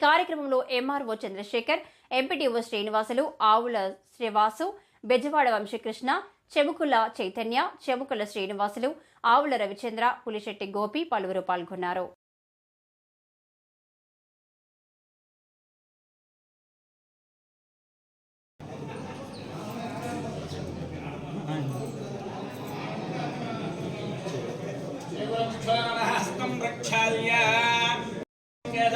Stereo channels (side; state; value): both; identical; correlation 1.00